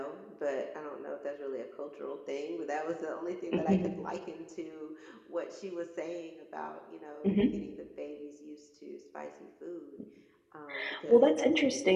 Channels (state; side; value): identical; both; correlation 1.00